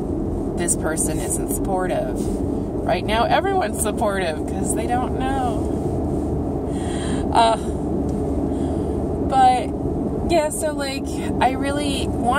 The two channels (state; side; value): identical; both; correlation 1.00